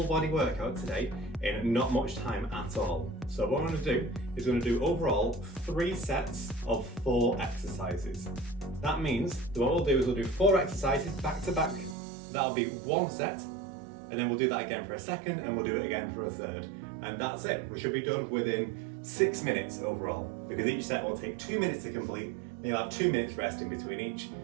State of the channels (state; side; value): drops out; left; at 12.0 s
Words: body workout today in not much time at all. So what I'm going to do is going to do overall 3 sets of 4 exercises. That means that what we'll do is we'll do 4 exercises back to back. That'll be 1 set, and then we'll do that again for a second, and we'll do it again for a third. And that's it. We should be done within 6 minutes overall, because each set will take 2 minutes to complete, and you'll have 2 minutes rest in between each.